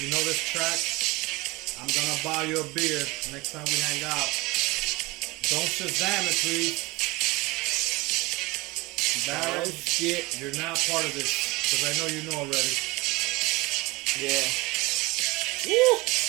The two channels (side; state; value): left; quieter; 22.8 dB